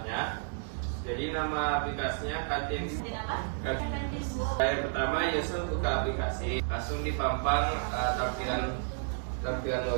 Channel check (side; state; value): left; silent; digital silence